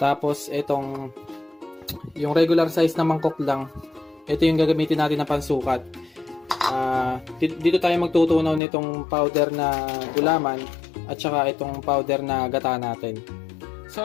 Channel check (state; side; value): drops out; right; at 8.6 s